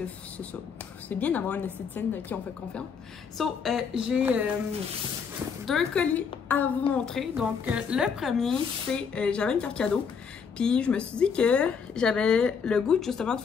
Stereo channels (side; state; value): right; quieter; 6.2 dB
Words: ça. C'est bien d'avoir une esthéticienne de qui on fait confiance. So, j'ai 2 colis à vous montrer. Donc, le premier, c'est... j'avais une carte cadeau. Puis, je me suis dit que j'avais le goût, justement, de